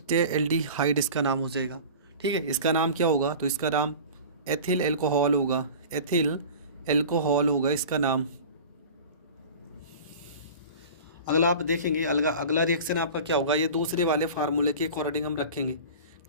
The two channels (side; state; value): both; inverted; correlation -0.37